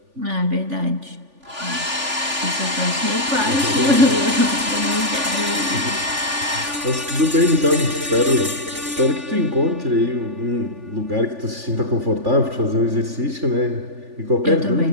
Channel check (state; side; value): late; left; 3.4 ms